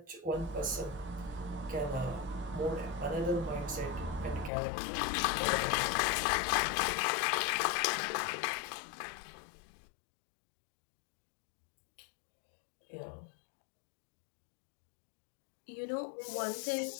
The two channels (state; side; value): drops out; right; at 4.5 s